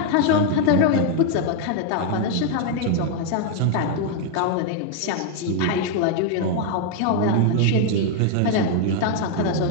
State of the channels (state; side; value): different; both; correlation 0.00